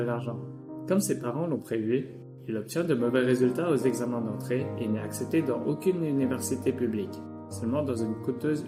Comme ses parents l'ont prévu, il obtient de mauvais résultats aux examens d'entrée et n'est accepté dans aucune université publique, seulement dans une coûteuse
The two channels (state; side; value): identical; both; correlation 1.00